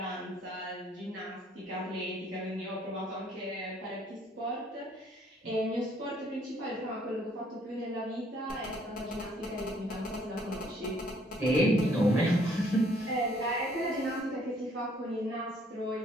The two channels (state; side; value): normal; both; correlation 0.63